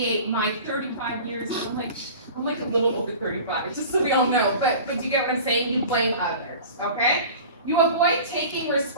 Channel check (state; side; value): inverted; both; correlation -0.39